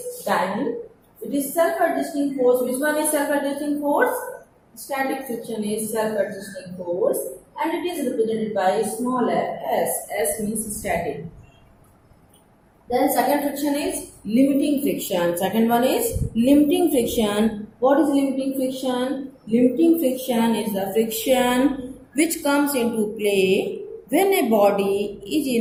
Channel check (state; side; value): identical; both; correlation 1.00